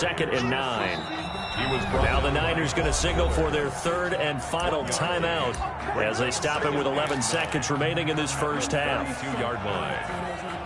and 9. Now the Niners going to signal for their 3rd and final timeout as they stop him with 11 seconds remaining in this first half. 22-yard line.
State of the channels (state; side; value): identical; both; correlation 1.00